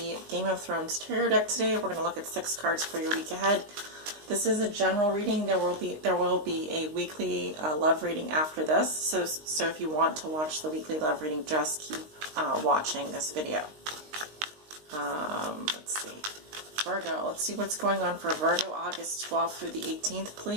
Game of Thrones tarot deck today. We're going to look at 6 cards for your week ahead. This is a general reading. There will be a weekly love reading after this. So if you want to watch the weekly love reading, just keep watching this video. Let's see. Virgo, let's see what's going on for Virgo August 12th through the 18th,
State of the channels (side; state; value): left; late; 19 ms